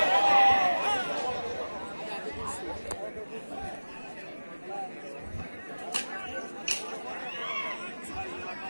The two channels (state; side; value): inverted; both; correlation -1.00